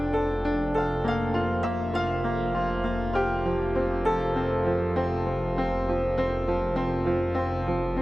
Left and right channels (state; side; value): normal; both; correlation 0.96